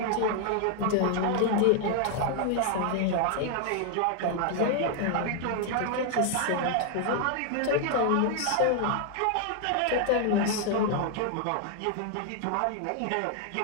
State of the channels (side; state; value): both; different; correlation 0.00